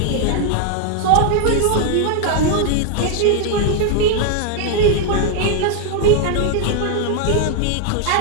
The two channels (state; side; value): different; both; correlation 0.00